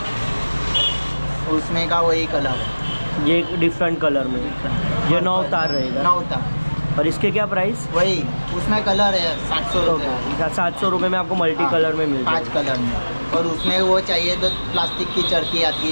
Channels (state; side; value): inverted; both; correlation -1.00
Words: उसमें का वही कलर है। ये डिफरेंट कलर में, ये 9 तार रहेगा। 9 तार। और इसके क्या प्राइस? वही उसमें कलर है 700 रुपये। 700 रुपये में आपको मल्टी कलर में मिल 5 कलर में। और उसमें वो चाहिए तो प्लास्टिक की चरखी आती